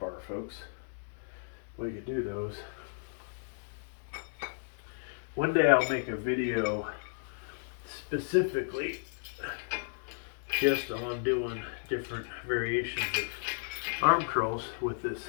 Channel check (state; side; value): silent; right; digital silence